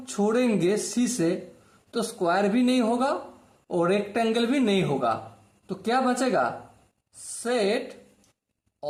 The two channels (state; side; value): identical; both; correlation 1.00